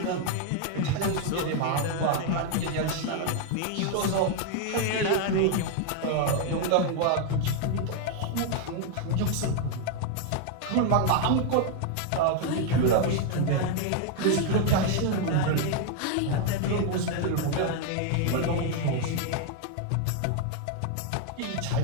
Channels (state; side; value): different; both; correlation 0.00